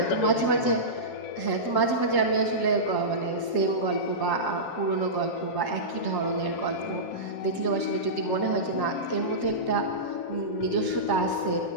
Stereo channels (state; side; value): late; right; 7.4 ms